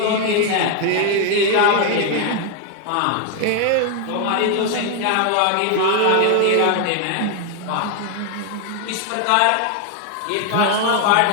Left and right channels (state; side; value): different; both; correlation 0.01